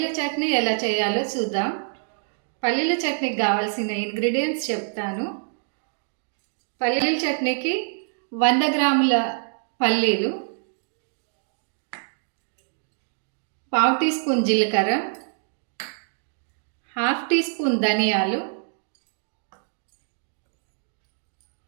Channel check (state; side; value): silent; left; digital silence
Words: చట్నీ ఎలా చేయాలో చూద్దాం. పల్లీల చట్నీకి కావాల్సిన ఇంగ్రీడియంట్స్ చెప్తాను. పల్లీల చట్నీకి 100 గ్రాముల పల్లీలు, 1/2 టీ స్పూన్ జీలకర్ర, 1/2 టీ స్పూన్ ధనియాలు,